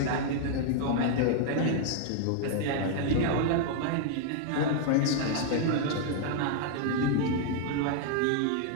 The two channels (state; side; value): different; both; correlation 0.00